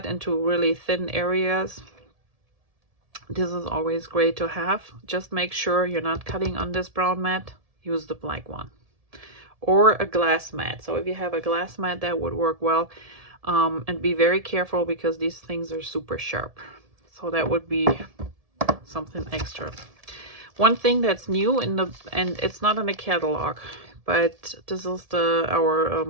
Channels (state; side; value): late; left; 1.7 ms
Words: into really thin areas, this is always great to have. Just make sure you're not cutting on this brown mat. Use the black one. Or a glass mat. So if you have a glass mat, that would work well. And be very careful because these things are super sharp. So that would be something extra. One thing that's new and it's not in the catalog, but this is our